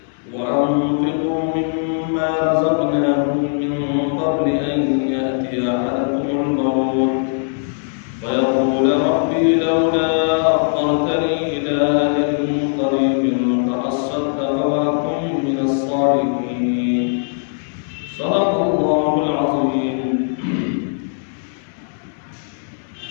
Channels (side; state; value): right; silent; 61 dB below the other